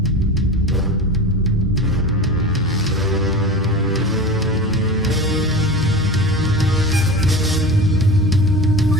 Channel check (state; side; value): normal; both; correlation 0.31